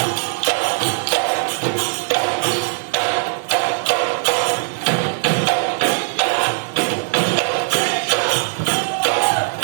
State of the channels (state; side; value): silent; left; digital silence